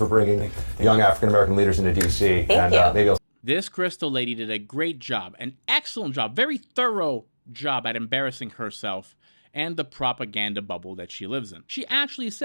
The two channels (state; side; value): inverted; both; correlation -1.00